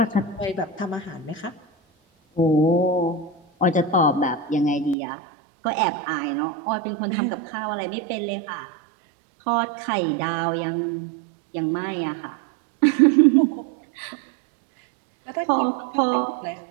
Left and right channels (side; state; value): left; drops out; at 5.0 s